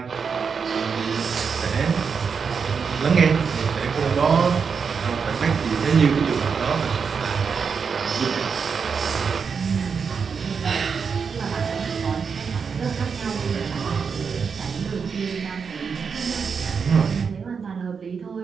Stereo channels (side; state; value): left; quieter; 5.9 dB